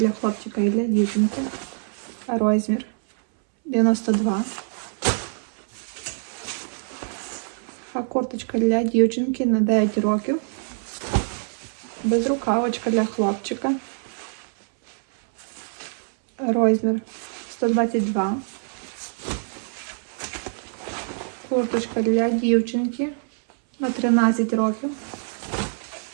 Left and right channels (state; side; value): silent; left; 62 dB below the other